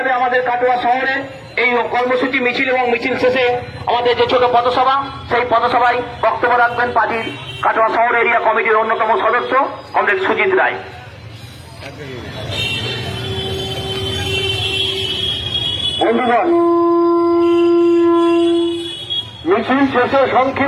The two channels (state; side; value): identical; both; correlation 1.00